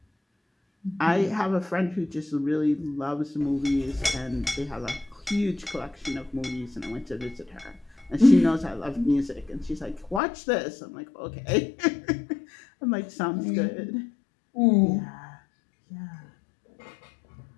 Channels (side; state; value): right; drops out; at 10.2 s